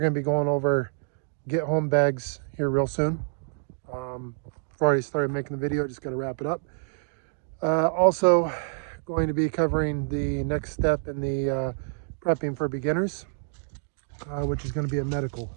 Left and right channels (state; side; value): silent; left; digital silence